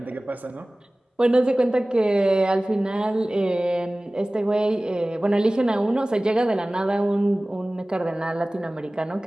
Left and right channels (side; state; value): both; normal; correlation 0.98